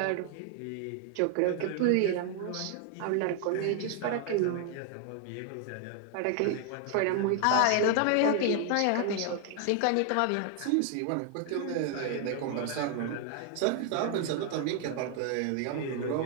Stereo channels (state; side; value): different; both; correlation 0.00